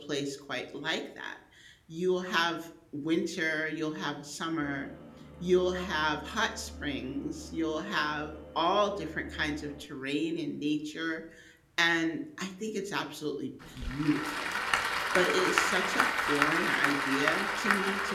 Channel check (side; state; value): both; identical; correlation 1.00